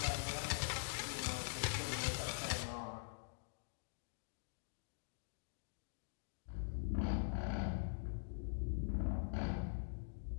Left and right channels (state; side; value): silent; right; digital silence